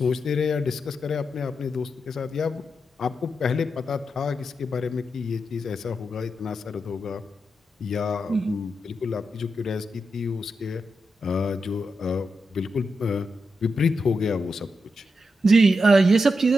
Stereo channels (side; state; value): both; normal; correlation 0.86